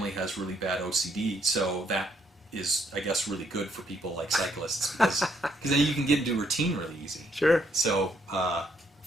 has really bad OCD, so that is, I guess, really good for people like cyclists, because then you can get into routine really easy. Sure. So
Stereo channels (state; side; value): normal; both; correlation 0.71